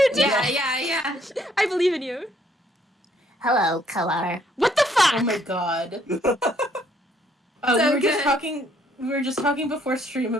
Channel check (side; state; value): both; normal; correlation 0.67